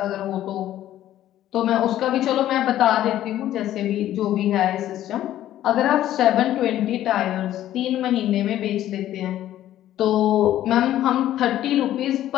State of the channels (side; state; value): right; quieter; 12.8 dB